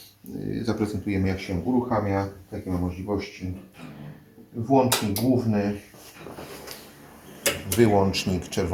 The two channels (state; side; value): identical; both; correlation 1.00